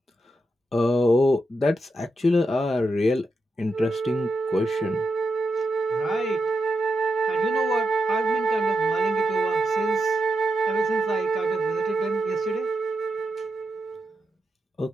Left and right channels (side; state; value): both; normal; correlation 0.86